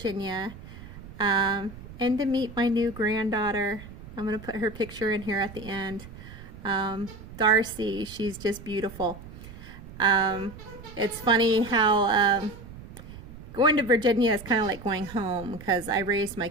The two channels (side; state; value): right; noise; rumble, 15 dB below the sound